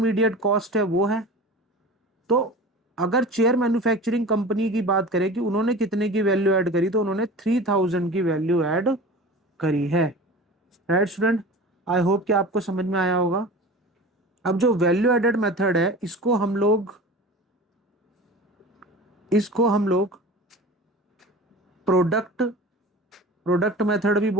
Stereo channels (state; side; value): normal; both; correlation 0.36